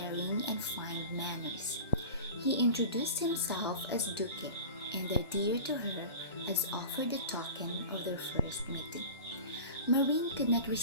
and fine manners. He introduced himself as Duque, and the deer to her as offered the token of their first meeting. Marine could not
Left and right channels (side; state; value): both; inverted; correlation -0.35